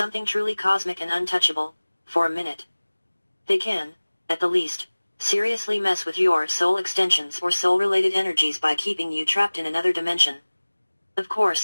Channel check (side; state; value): both; inverted; correlation -1.00